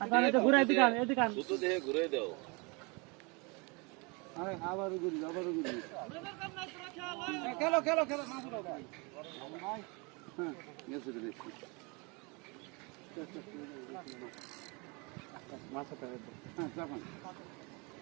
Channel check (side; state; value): left; quieter; 29.6 dB